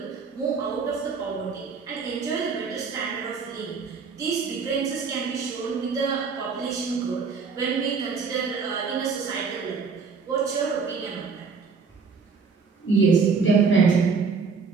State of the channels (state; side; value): quieter; left; 5.2 dB